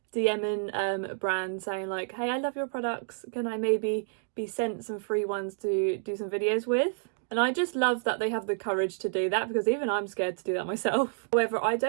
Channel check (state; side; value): silent; left; digital silence